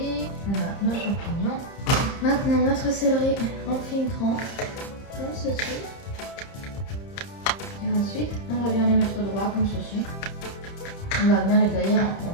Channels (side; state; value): right; late; 30 ms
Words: Voilà nos champignons. Maintenant, notre céleri en fines tranches. Comme ceci. Et ensuite, on va bien les mettre droit comme ceci. On va bien les tailler